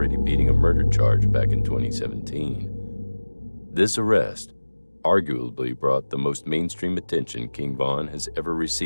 beating a murder charge back in 2017. This arrest arguably brought the most mainstream attention King Von has ever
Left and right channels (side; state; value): both; inverted; correlation -1.00